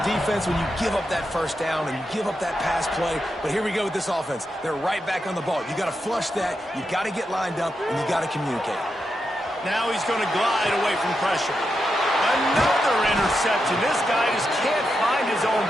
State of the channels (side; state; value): both; normal; correlation 0.86